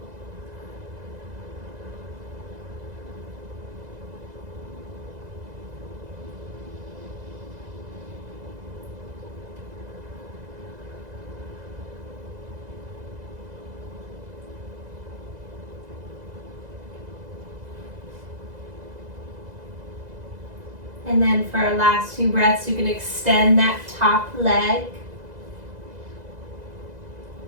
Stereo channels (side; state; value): left; late; 2.0 ms